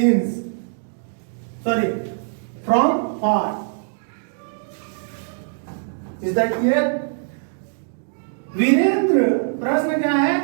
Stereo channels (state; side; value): silent; left; digital silence